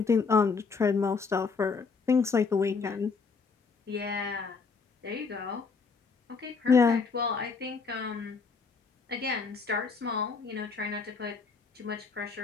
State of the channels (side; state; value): right; quieter; 4.9 dB